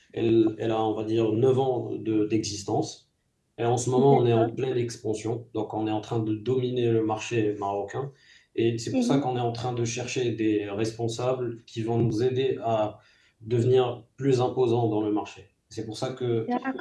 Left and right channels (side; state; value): both; identical; correlation 1.00